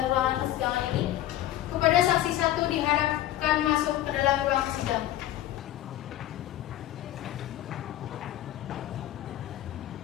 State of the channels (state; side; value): quieter; right; 13.6 dB